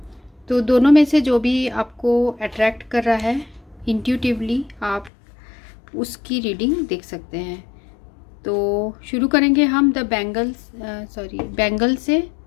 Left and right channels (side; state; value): right; drops out; at 5.1 s